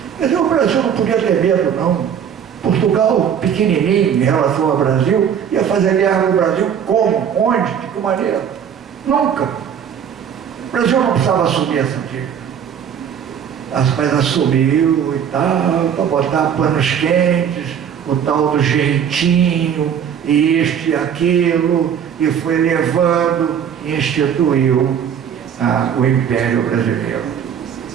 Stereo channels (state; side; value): quieter; left; 8.3 dB